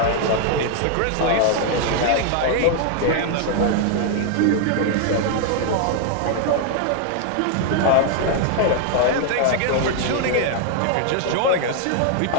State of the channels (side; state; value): both; different; correlation 0.00